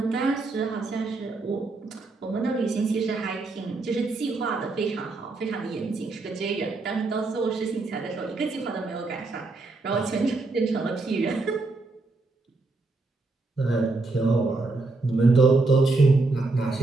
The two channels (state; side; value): quieter; left; 3.4 dB